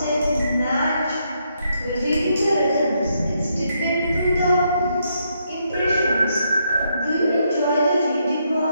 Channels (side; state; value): both; inverted; correlation -0.77